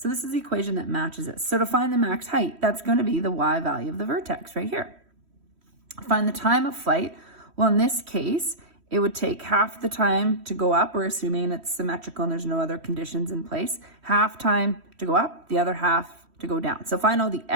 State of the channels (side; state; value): left; late; 3.1 ms